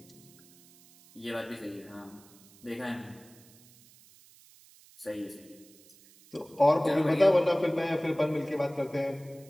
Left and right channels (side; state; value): right; noise; hiss, 25 dB below the sound